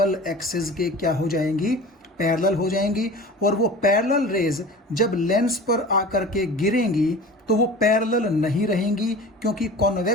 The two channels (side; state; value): both; normal; correlation 0.38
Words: एक्सिस के क्या हो जाएंगी, पैरेलल हो जाएंगी। और वो पैरेलल रेज जब लेंस पर आकर के गिरेंगी तो वो पैरेलल नहीं रहेंगी, क्योंकि